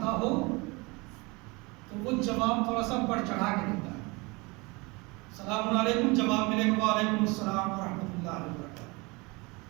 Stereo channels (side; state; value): left; quieter; 26.1 dB